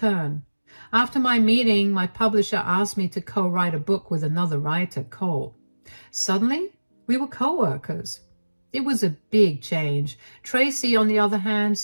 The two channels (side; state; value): both; inverted; correlation -1.00